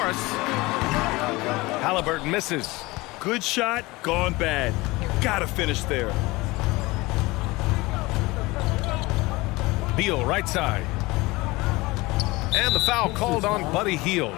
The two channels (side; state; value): right; quieter; 21.9 dB